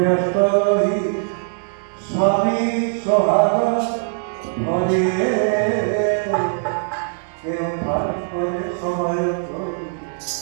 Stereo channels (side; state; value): left; silent; digital silence